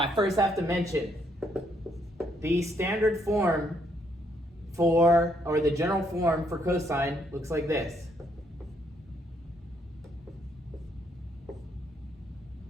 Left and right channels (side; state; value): both; normal; correlation 0.72